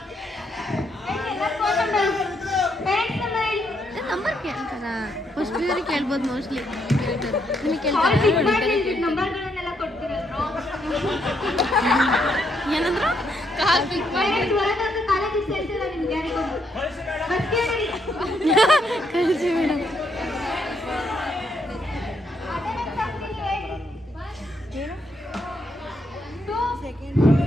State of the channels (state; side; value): normal; both; correlation 0.75